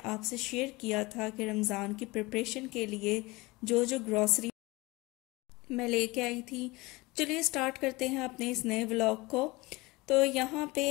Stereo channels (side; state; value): right; quieter; 22.6 dB